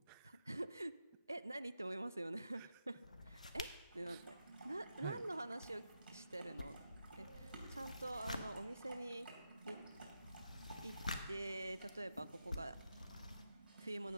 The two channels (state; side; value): inverted; both; correlation -0.86